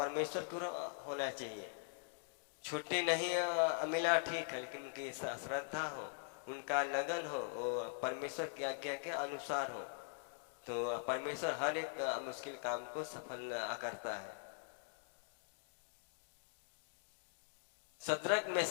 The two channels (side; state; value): right; silent; digital silence